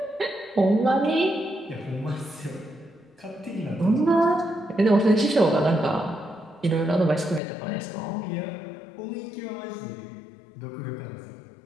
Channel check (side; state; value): right; drops out; at 7.4 s